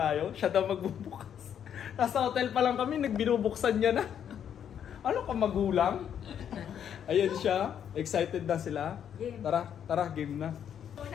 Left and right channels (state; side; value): quieter; right; 8.9 dB